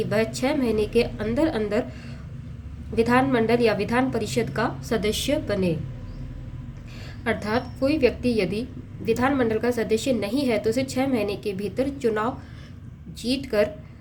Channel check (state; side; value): identical; both; correlation 1.00